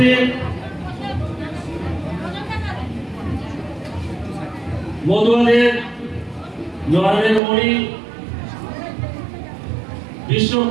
মতুয়াদের নয়নের মণি,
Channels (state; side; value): drops out; left; at 7.4 s